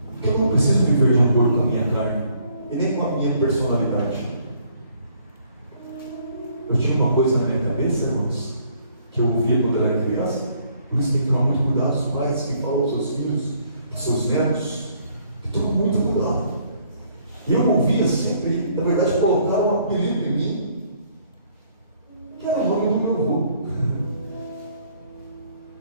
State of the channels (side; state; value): both; inverted; correlation -0.65